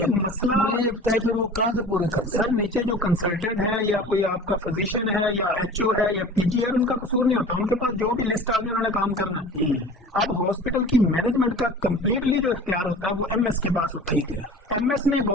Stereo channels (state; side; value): normal; both; correlation 0.41